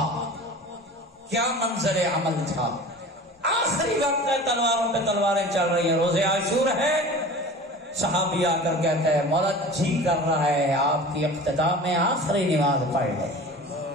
کیا منظر عمل تھا؟ آخری وقت ہے، تلواروں پہ تلواریں چل رہی ہیں، روزے عاشور ہے، صحابی آ کر کہتا ہے مولا جی کر رہا ہے آپ کی اختتام میں آخری نماز پڑھ لیں۔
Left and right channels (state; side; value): normal; both; correlation 0.38